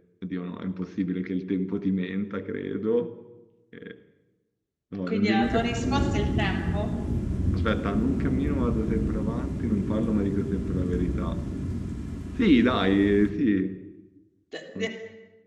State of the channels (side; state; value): both; identical; correlation 1.00